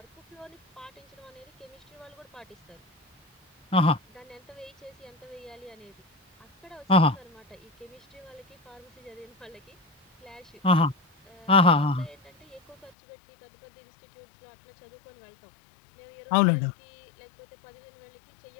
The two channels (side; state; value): right; drops out; at 12.9 s